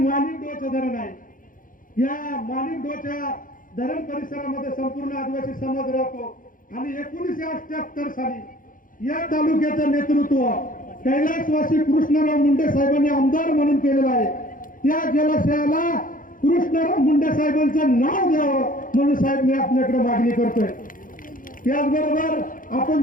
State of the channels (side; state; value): right; late; 0.39 ms